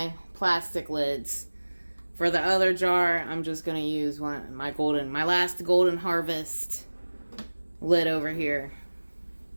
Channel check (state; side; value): inverted; both; correlation -1.00